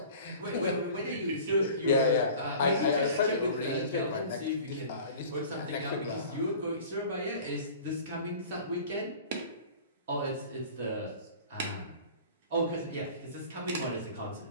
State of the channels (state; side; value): inverted; both; correlation -0.43